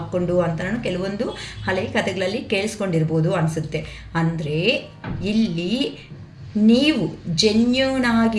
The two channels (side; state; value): both; identical; correlation 1.00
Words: ಅಂತ ನಾನು ಕೆಲವೊಂದು ಹಳೆ ಕಥೆಗಳಲ್ಲಿ ಕೇಳಿಸ್ಕೊಂಡಿರ್ಬೋದು ಅನಿಸುತ್ತೆ. ಅಂದರೆ ಇಲ್ಲಿ ನೀವು ಜೆನ್ಯೂನ್